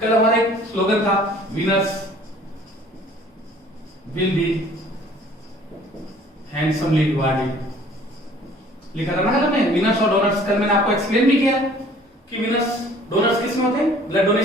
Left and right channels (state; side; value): normal; both; correlation 0.53